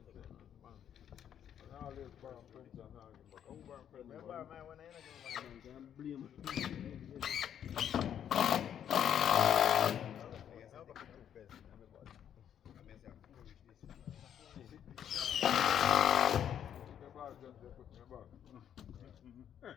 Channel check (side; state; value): right; quieter; 9.5 dB